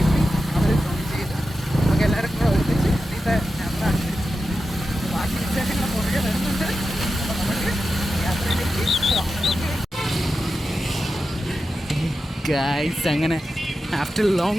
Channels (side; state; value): both; normal; correlation 0.91